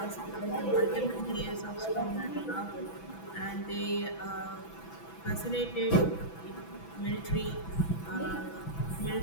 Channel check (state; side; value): late; right; 6.1 ms